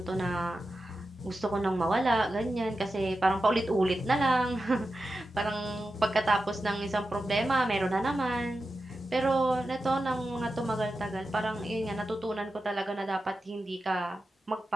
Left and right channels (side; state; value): both; normal; correlation 0.91